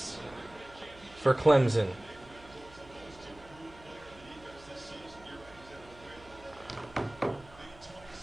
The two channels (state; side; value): noise; right; hum, 22 dB below the sound